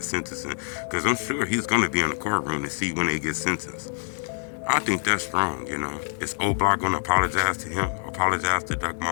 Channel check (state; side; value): silent; right; 61 dB below the other